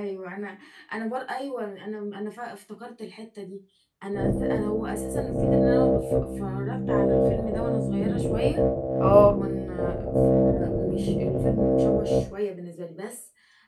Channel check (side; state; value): both; identical; correlation 1.00